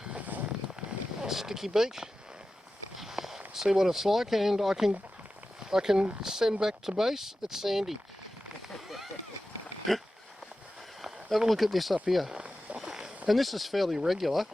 sticky beak. See what it's like, and I can send back to base. It's sandy. Have a look at this up here. And this is fairly regular,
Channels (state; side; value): normal; both; correlation 0.93